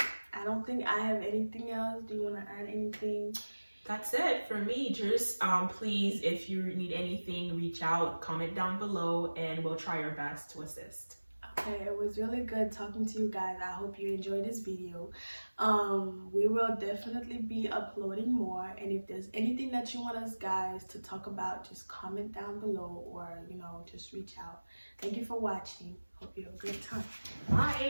I don't think I have anything else. Do you want to add anything? That's it for me. Just please, if you need anything, reach out, comment down below, and we'll try our best to assist. Okay, it was really good talking to you guys. I hope you enjoyed this video. We will definitely be uploading more, and if there's anything that you want us guys to talk about, just comment down below, or just reach out. Thank you for watching. Hope you have a good time.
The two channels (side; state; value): both; inverted; correlation -1.00